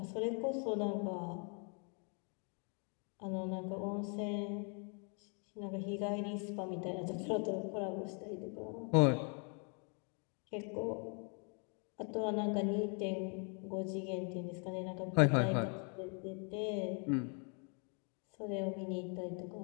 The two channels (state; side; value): quieter; right; 38.8 dB